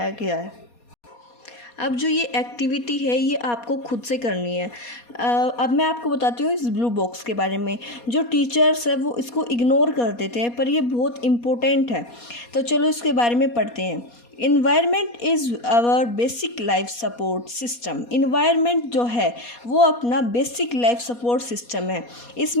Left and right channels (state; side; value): late; right; 4.2 ms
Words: गया है. अब जो ये एक्टिविटी है ये आपको खुद से करनी है. अब मैं आपको बताती हूँ इस ब्लू बॉक्स के बारे में. जो टीचर्स है वो इसको इग्नोर कर देते हैं पर ये बहुत इम्पोर्टेंट है. तो चलो इसके बारे में पढ़ते हैं. Environment is our basic life support system. Environment जो है वो अपना बेसिक लाइफ सपोर्ट सिस्टम है.